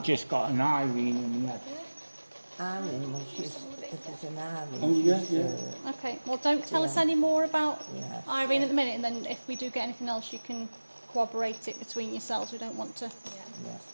just got an Irene in the head. Irene, well, she's an Irene. Oh, yeah. Okay, well don't tell us any more about Irene at the minute, and then if we do get anything else you can corroborate it between yourselves. We don't want to...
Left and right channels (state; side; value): inverted; both; correlation -1.00